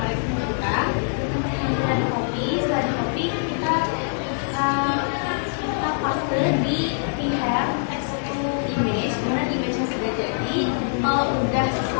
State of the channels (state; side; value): silent; right; 57 dB below the other